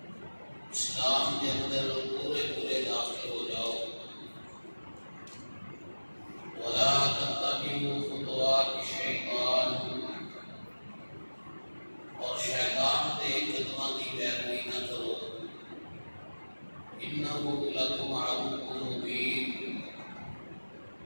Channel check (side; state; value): both; inverted; correlation -1.00